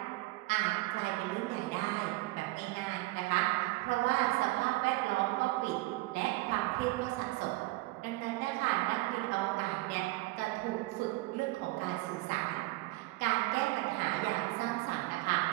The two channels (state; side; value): quieter; left; 20.6 dB